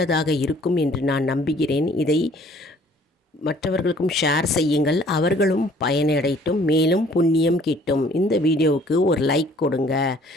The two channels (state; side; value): normal; both; correlation 0.57